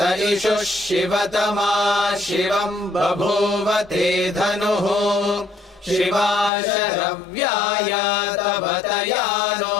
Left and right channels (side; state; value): right; drops out; at 6.5 s